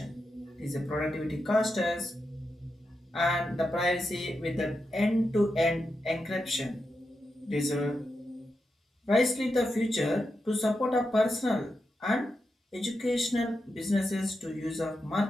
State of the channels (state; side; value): normal; both; correlation 0.88